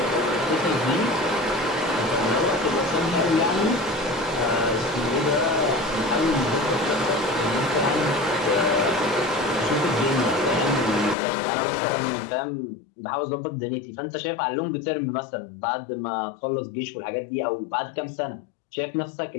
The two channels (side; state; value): right; drops out; at 11.2 s